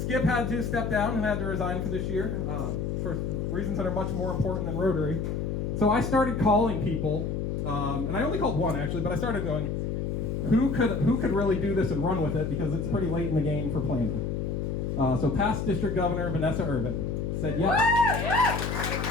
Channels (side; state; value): left; noise; hum, 2 dB below the sound